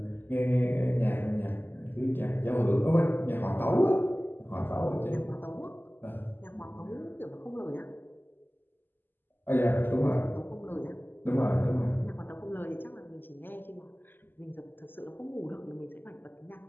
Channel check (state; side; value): late; right; 0.094 ms